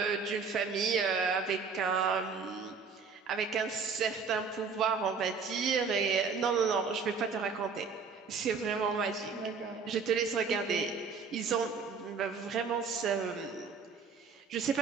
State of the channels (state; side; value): quieter; left; 5.3 dB